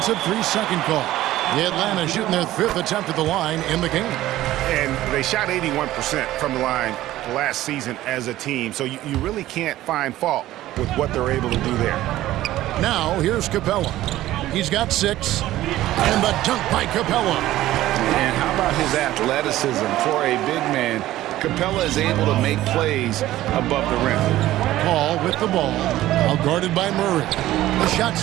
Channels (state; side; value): quieter; left; 15.0 dB